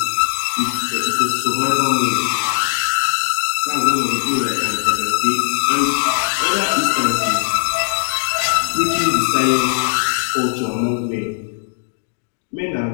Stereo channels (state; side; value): silent; right; digital silence